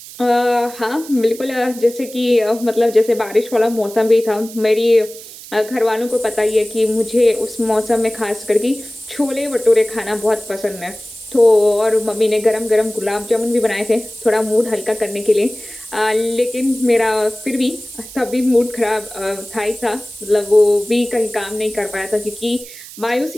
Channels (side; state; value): right; noise; hiss, 16 dB below the sound